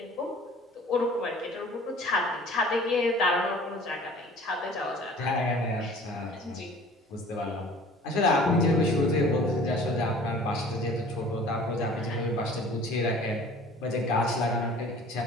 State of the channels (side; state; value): both; normal; correlation 0.48